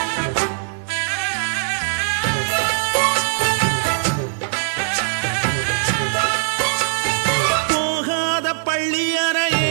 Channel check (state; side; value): silent; left; 65 dB below the other